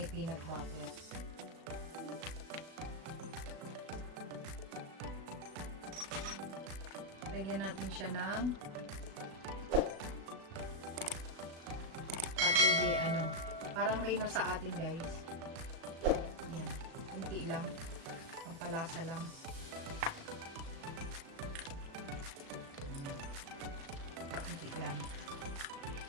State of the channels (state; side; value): late; left; 36 ms